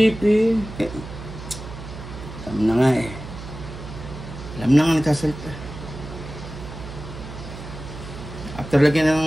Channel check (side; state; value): right; noise; hum, 12 dB below the sound